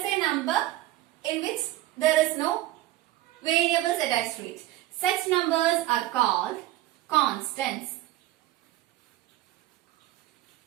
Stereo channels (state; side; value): quieter; left; 15.6 dB